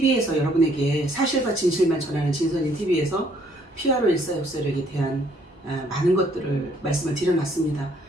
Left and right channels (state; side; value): normal; both; correlation 0.65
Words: 여러분에게 사실과 진실만 전하는 진선인 TV에서 피아로 일사역사력에 대한 많은 것들을 말씀을 드려놨습니다.